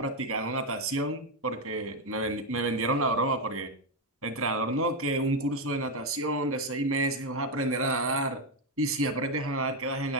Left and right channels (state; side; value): normal; both; correlation 0.06